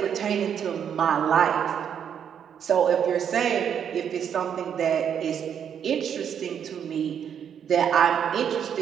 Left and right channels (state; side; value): quieter; left; 8.3 dB